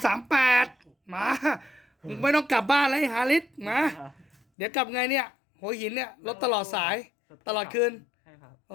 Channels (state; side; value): drops out; right; at 4.4 s